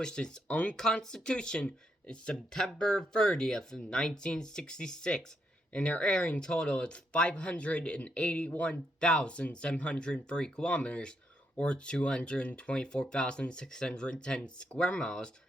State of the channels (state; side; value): normal; both; correlation 0.78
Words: its own constitution in September 30th of 1966, and their area in total is 581,703 kilometers, or 224,610 square miles,